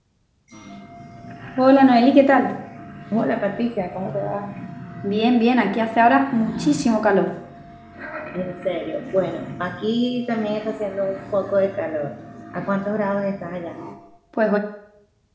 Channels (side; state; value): both; identical; correlation 1.00